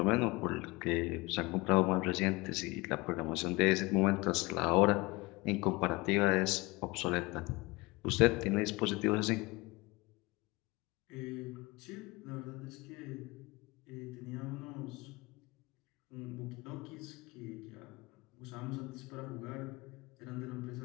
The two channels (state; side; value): quieter; right; 23.6 dB